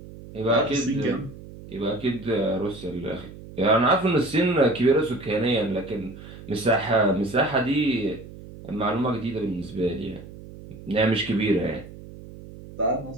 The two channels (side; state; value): right; noise; hum, 16 dB below the sound